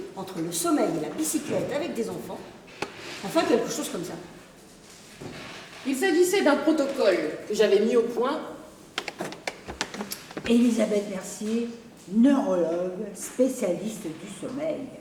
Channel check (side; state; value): both; identical; correlation 1.00